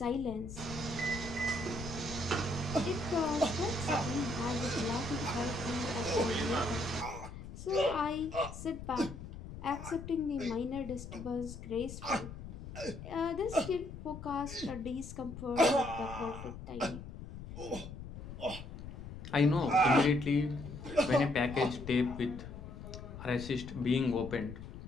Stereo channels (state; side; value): noise; left; rumble, 11 dB below the sound